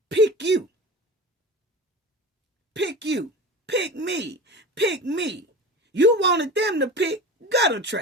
pick you. Pick you. Pick me. Pick me. You wanted them to pick gutter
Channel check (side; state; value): both; normal; correlation 0.32